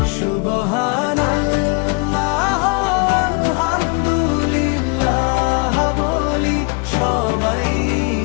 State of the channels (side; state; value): right; quieter; 31.0 dB